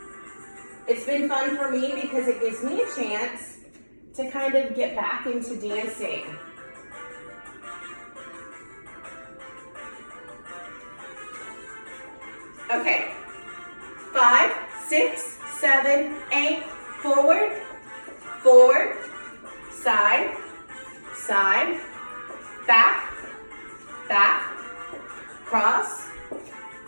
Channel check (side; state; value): both; inverted; correlation -1.00